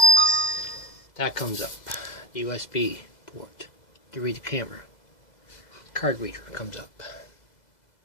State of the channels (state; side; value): late; right; 2.0 ms